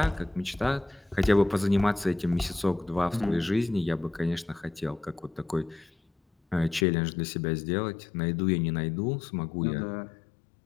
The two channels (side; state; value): right; drops out; at 6.9 s